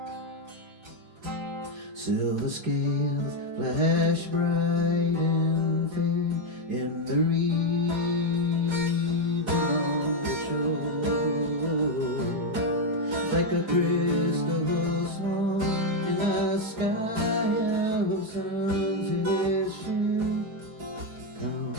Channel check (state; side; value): late; left; 4.8 ms